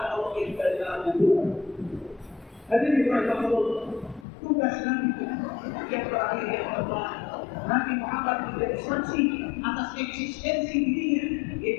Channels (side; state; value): right; drops out; at 4.2 s